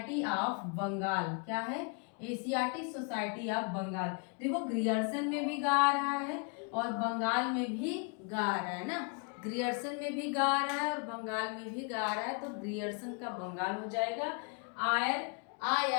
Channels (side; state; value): right; quieter; 36.2 dB